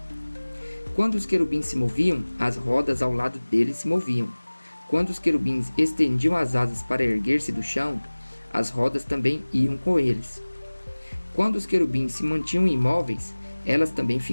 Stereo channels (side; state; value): both; inverted; correlation -1.00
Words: Quando os querubins se moviam, as rodas ao lado deles se moviam. Quando os querubins estendiam as asas para erguer-se do chão, as rodas também iam com eles. Quando os querubins se mantinham imóveis, elas também